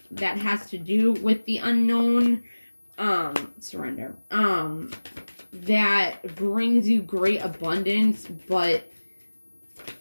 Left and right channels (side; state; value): both; inverted; correlation -1.00